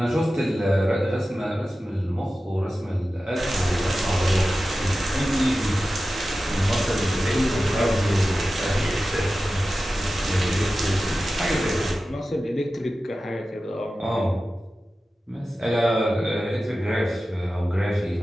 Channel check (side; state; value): both; normal; correlation 0.94